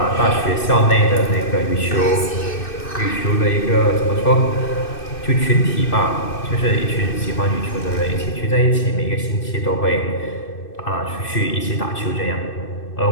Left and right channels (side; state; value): right; late; 2.6 ms